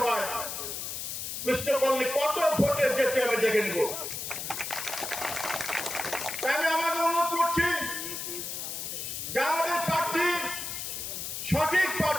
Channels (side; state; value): left; noise; hiss, 5 dB below the sound